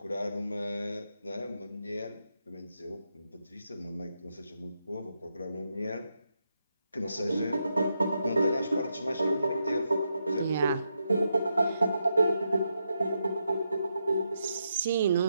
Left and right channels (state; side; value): inverted; both; correlation -0.83